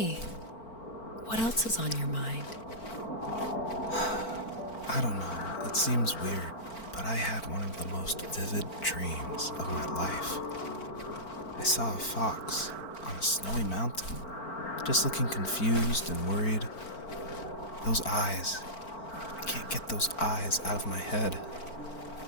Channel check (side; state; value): right; late; 4.5 ms